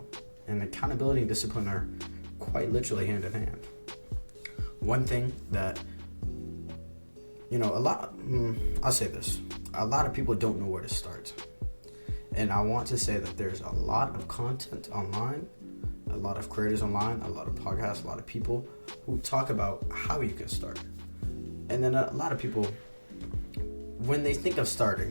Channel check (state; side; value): inverted; both; correlation -1.00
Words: And accountability and discipline are quite literally hand in hand. One thing that, I'll say this. A lot of people don't know where to start. And I want to say that there's a lot of content online, a lot of creators online, a lot of podcasts, a lot of people who talk about how you can start. And then a lot of people, when they think of